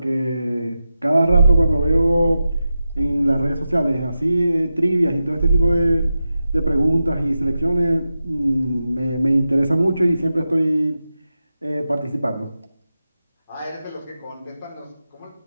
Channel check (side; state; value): both; inverted; correlation -0.91